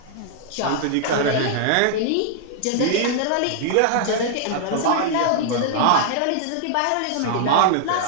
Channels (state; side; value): different; both; correlation -0.01